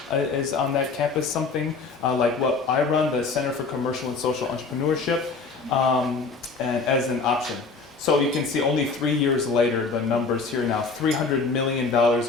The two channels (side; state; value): right; quieter; 4.4 dB